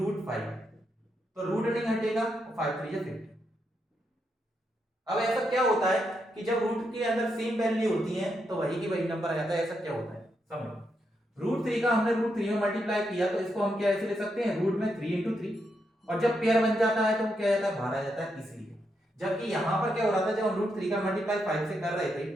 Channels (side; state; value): both; normal; correlation 0.81